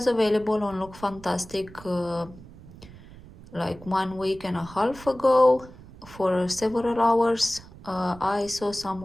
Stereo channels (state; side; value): noise; right; rumble, 19 dB below the sound